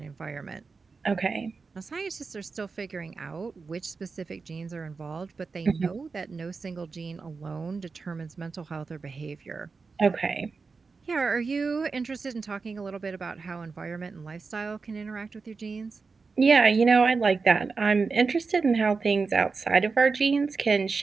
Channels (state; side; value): quieter; left; 4.6 dB